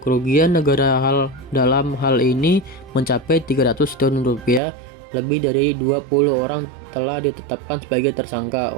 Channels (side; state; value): left; drops out; at 4.6 s